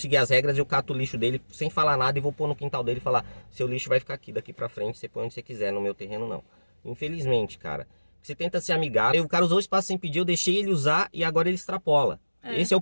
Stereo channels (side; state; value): both; inverted; correlation -1.00